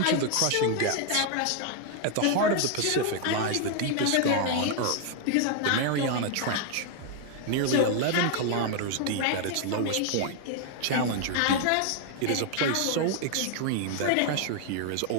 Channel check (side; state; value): both; different; correlation 0.00